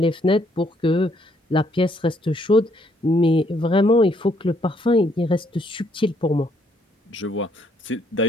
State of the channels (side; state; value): both; normal; correlation 0.69